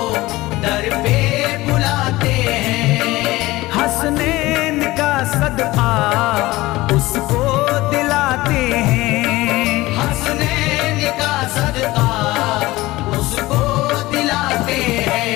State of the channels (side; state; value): right; quieter; 19.0 dB